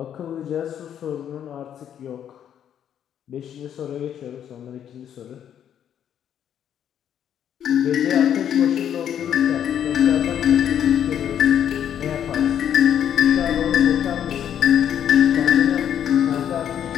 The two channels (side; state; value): right; quieter; 9.5 dB